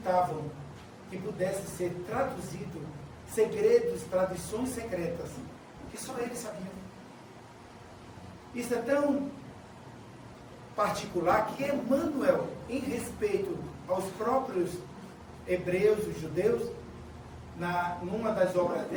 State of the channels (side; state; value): both; identical; correlation 1.00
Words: que pudesse ser traduzido segredos, tradições secretas, que só eles sabiam. Isso é tão particular que Emmanuel, em respeito aos próprios hebreus, os judeus, numa das obras